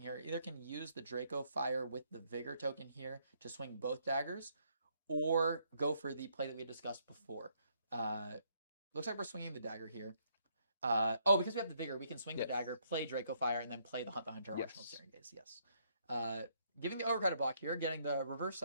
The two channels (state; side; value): inverted; both; correlation -0.71